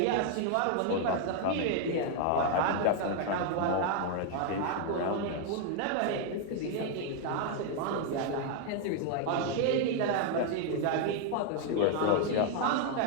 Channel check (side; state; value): both; different; correlation 0.00